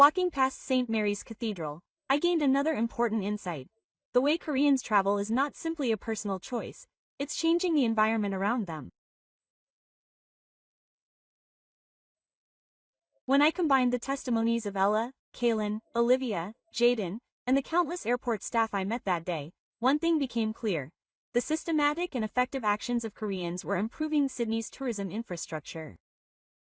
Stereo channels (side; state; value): both; identical; correlation 1.00